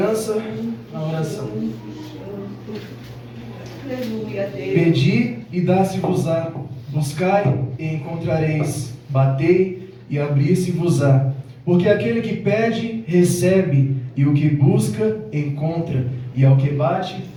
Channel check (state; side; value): identical; both; correlation 1.00